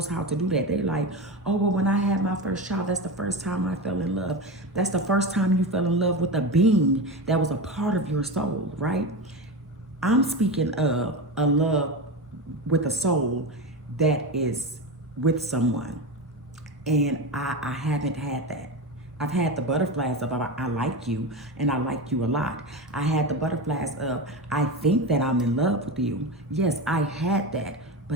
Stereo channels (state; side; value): normal; both; correlation 0.21